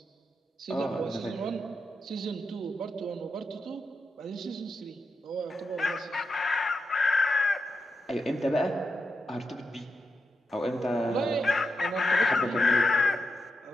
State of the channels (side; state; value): both; normal; correlation 0.86